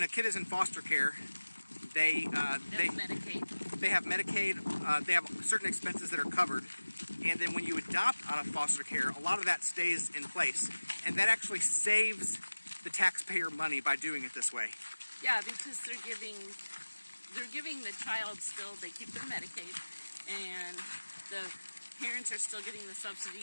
a kid is in foster care, they have Medicaid. They have Medicaid. They have certain expenses that are covered, and then when you adopt out of foster care, a lot of that stays in place, and that actually saves the taxpayer money by doing it this way. Yeah, because they're giving the child still. They keep their Medicaid, and the parents are still getting the subsidy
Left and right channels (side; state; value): both; inverted; correlation -1.00